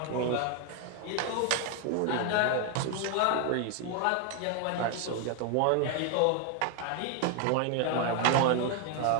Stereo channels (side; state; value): both; different; correlation 0.01